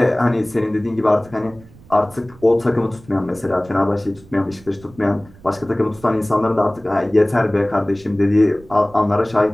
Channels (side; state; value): right; noise; rumble, 23 dB below the sound